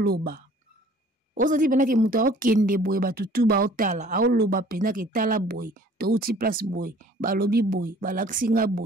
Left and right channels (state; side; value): normal; both; correlation 0.53